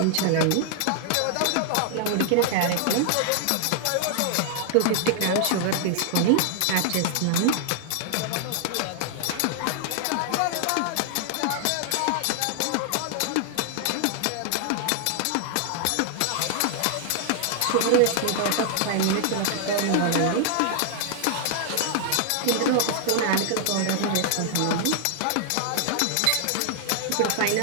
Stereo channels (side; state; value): both; different; correlation 0.00